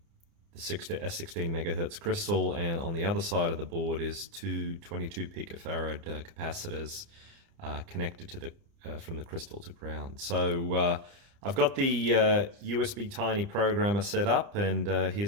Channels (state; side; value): late; left; 30 ms